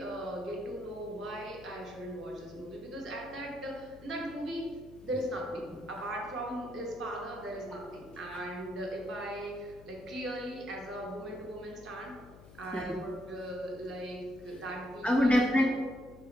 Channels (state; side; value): noise; left; hum, 18 dB below the sound